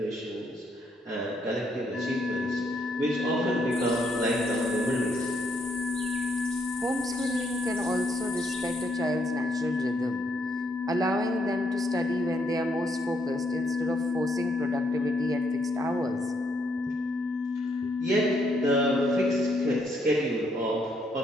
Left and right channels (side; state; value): both; normal; correlation 0.73